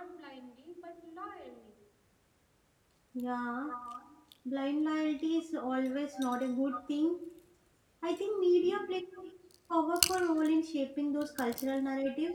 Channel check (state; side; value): identical; both; correlation 1.00